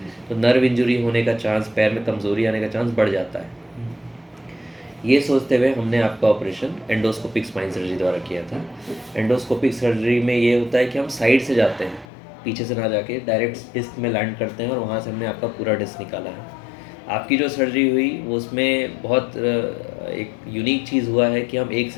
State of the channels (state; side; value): drops out; right; at 12.1 s